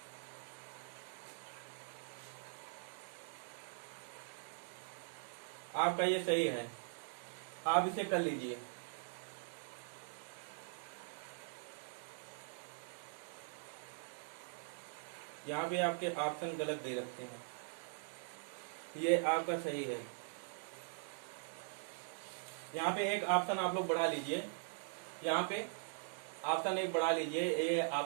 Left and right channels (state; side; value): silent; left; digital silence